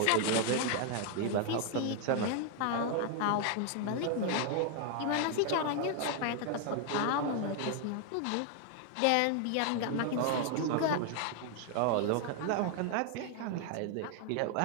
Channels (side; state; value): both; different; correlation 0.00